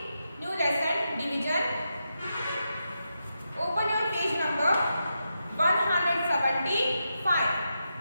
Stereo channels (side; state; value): both; inverted; correlation -0.87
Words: new lesson division, open your page number 175.